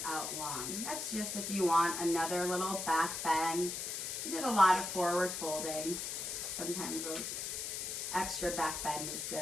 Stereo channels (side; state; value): left; noise; hiss, 4 dB below the sound